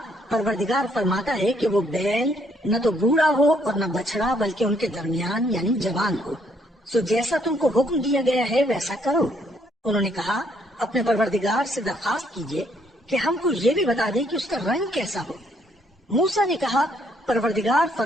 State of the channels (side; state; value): both; normal; correlation 0.69